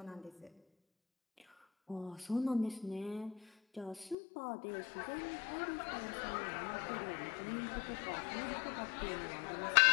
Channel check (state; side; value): drops out; right; at 4.2 s